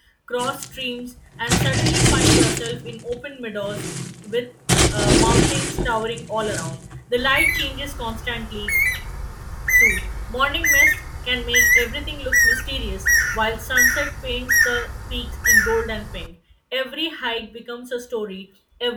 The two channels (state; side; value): identical; both; correlation 1.00